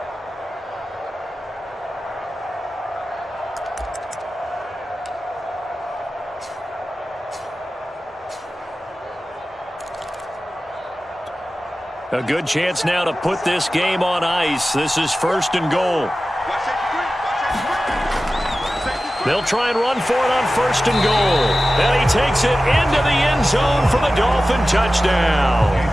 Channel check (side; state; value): both; normal; correlation 0.95